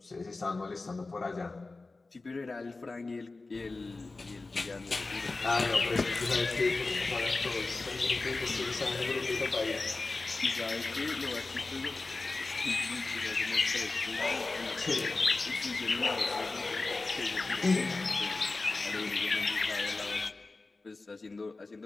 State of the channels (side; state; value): right; quieter; 3.5 dB